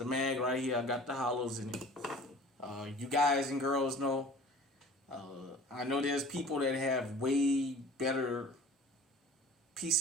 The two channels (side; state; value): both; normal; correlation 0.45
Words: mag right here. I got the hollows in it. You guys and girls know. I know there's people that have way better